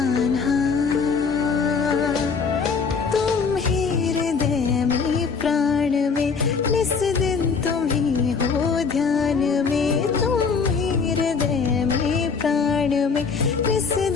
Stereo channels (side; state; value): right; quieter; 5.3 dB